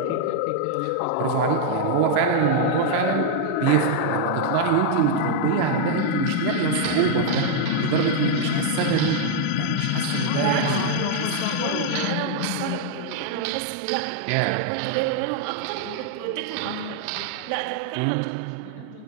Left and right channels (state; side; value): different; both; correlation -0.01